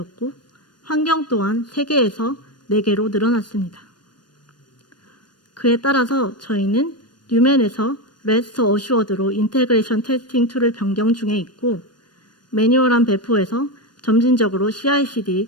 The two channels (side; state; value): right; late; 0.71 ms